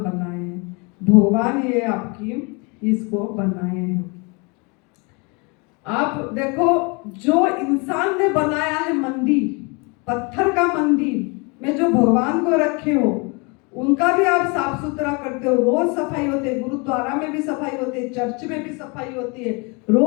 हैं, भगवान ये आपकी इसको बनाए हैं। आप देखो, जो इंसान ने बनाया है मंदिर, पत्थर का मंदिर में जो भगवान को रखे हो, उनका भी आप साफ सुथरा करते हो, रोज सफाई होती है, गुरुद्वारा में भी सफाई होती है, चर्च में भी सफाई होती है,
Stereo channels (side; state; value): right; quieter; 30.7 dB